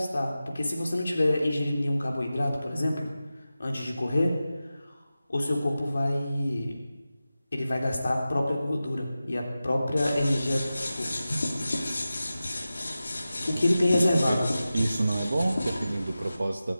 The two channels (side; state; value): both; inverted; correlation -0.94